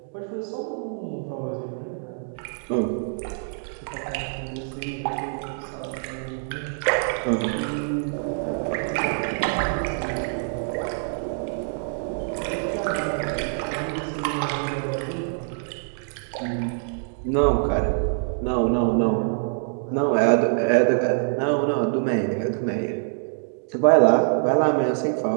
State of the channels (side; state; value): left; silent; digital silence